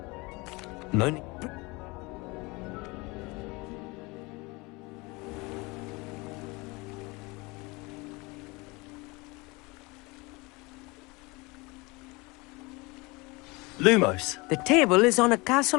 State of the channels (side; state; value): right; quieter; 25.2 dB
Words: No need... Lumos. The table is on a